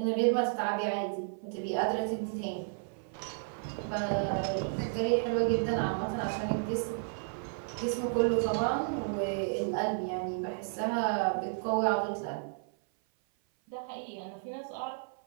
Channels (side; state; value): left; silent; 55 dB below the other